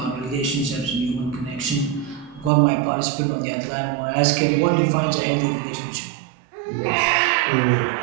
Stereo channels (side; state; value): left; drops out; at 2.5 s